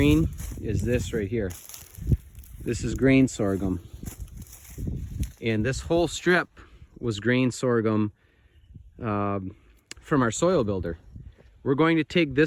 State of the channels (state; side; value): identical; both; correlation 1.00